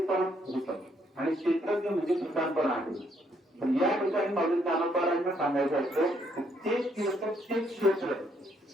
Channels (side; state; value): both; normal; correlation 0.71